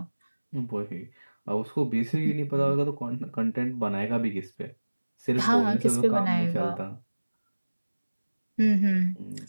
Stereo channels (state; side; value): inverted; both; correlation -1.00